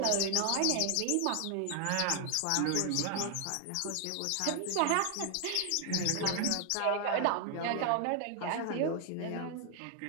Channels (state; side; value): different; both; correlation 0.00